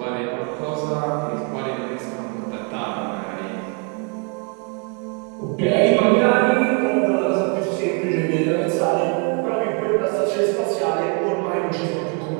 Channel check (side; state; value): left; quieter; 36.7 dB